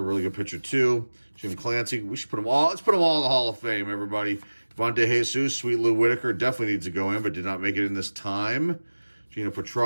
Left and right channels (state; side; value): inverted; both; correlation -1.00